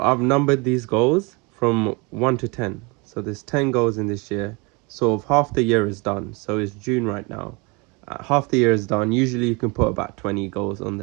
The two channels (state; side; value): quieter; left; 28.7 dB